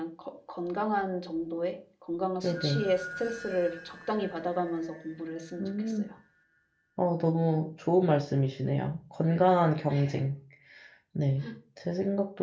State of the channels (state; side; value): identical; both; correlation 1.00